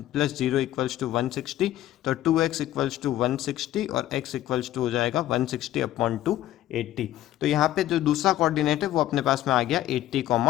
0 equals to 160। तो 2x इक्वल्स टू 160 और x इक्वल्स टू हो जाएगा 160 अपॉन 280। तो यहाँ पे जो दूसरा कोऑर्डिनेट है वो अपने पास में आ गया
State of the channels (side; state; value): right; quieter; 13.7 dB